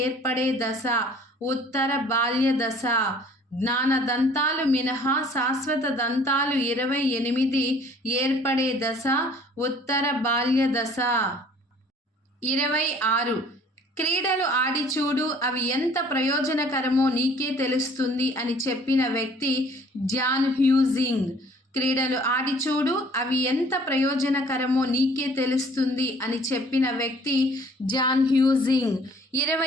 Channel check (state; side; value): normal; both; correlation 0.54